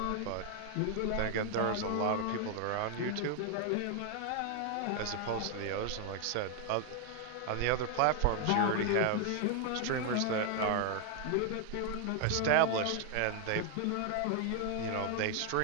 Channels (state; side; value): different; both; correlation 0.00